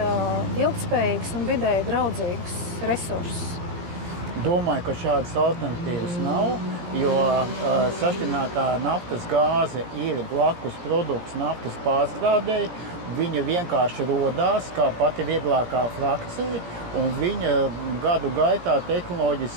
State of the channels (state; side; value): late; left; 17 ms